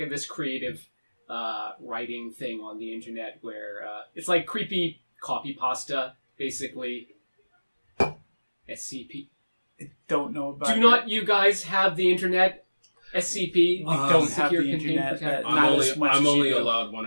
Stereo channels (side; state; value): both; inverted; correlation -1.00